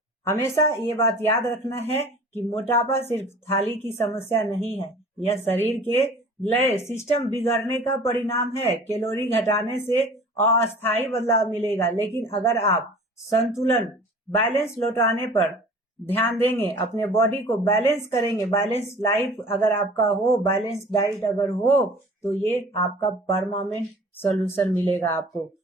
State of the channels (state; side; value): normal; both; correlation 0.45